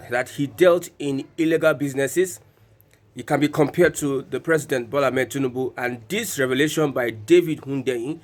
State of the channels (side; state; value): both; identical; correlation 1.00